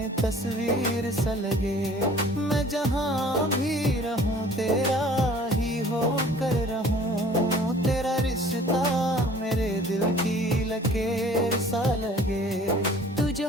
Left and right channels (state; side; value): normal; both; correlation 0.51